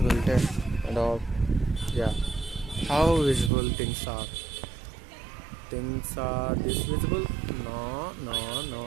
and all. Yeah, how visible things are. Things are this visible? No.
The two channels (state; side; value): drops out; left; at 3.5 s